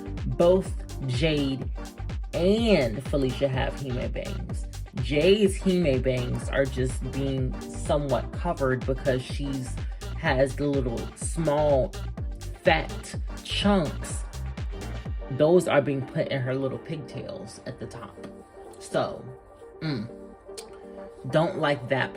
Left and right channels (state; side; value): identical; both; correlation 1.00